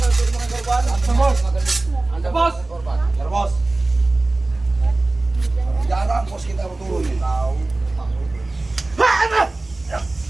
Bos. Bos. Jarang bos kita turun nih. Tahu.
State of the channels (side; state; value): left; quieter; 3.0 dB